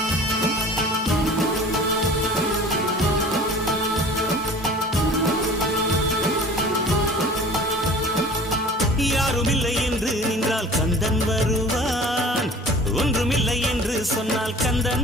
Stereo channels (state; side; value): normal; both; correlation 0.44